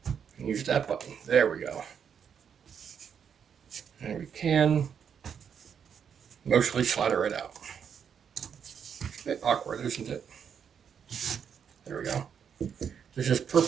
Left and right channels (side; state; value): left; quieter; 7.5 dB